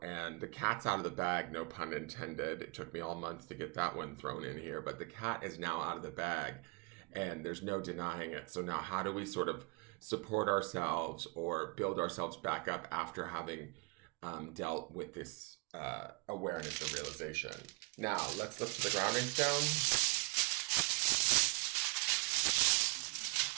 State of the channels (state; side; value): quieter; left; 28.6 dB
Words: and the cat's out of the bag, no pun intended. It took me all month to get that one thrown in here, but the cat is now out of the bag, and there's no denying it. So now how do we sort of support ourselves or build ourselves back up after having dealt with this awareness or realization? Now, let's look to the grounding stone.